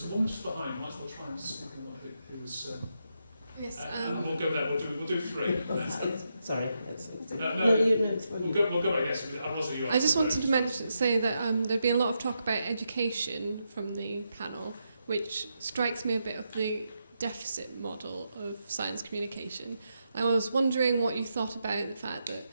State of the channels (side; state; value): both; inverted; correlation -0.83